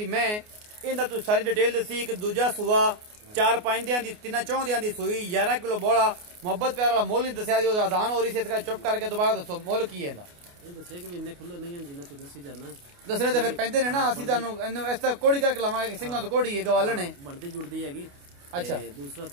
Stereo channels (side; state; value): left; late; 29 ms